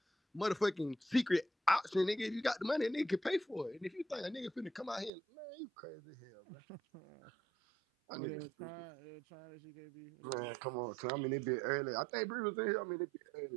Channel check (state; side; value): drops out; left; at 5.1 s